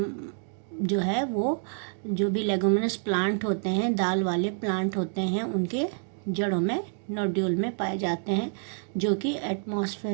जो है वो जो भी लेगुमिनस प्लांट होते हैं, दाल वाले प्लांट होते हैं, उनके जड़ों में नोड्यूल में पाए जाते हैं, जो कि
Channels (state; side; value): silent; left; 55 dB below the other